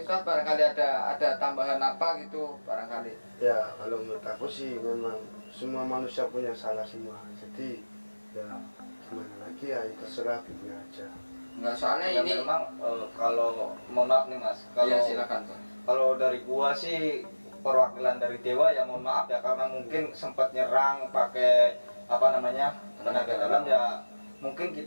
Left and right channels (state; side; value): inverted; both; correlation -1.00